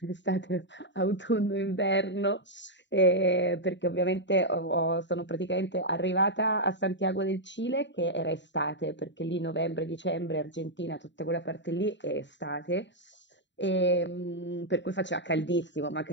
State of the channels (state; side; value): late; right; 0.52 ms